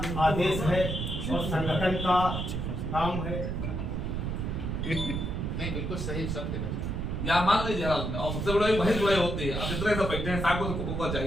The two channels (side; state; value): right; noise; rumble, 2 dB below the sound